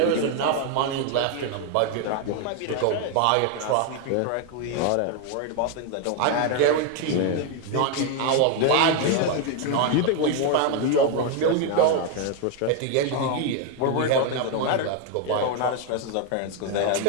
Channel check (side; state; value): both; different; correlation 0.01